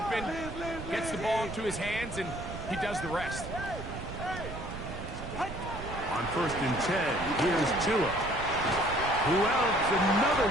gets the ball into his hands, and he does the rest. On On 1st and 10, here's Tua, who outs another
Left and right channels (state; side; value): noise; right; rumble, 9 dB below the sound